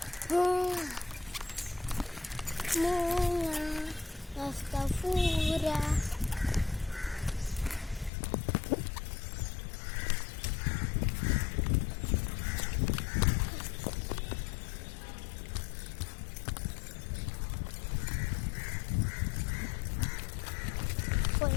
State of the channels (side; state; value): right; drops out; at 8.1 s